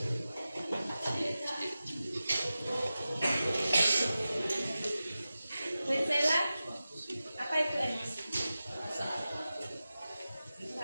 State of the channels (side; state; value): both; inverted; correlation -0.94